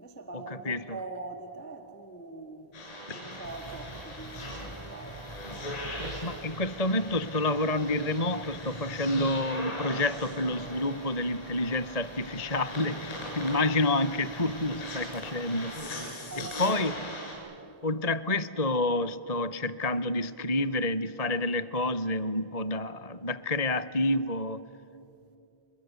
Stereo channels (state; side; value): late; right; 1.8 ms